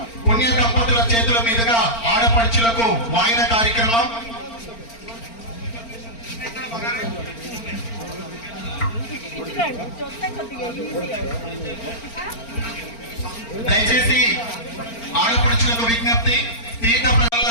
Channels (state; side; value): late; right; 4.4 ms